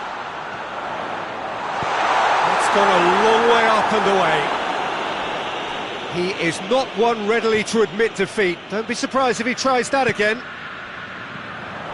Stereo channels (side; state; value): both; identical; correlation 1.00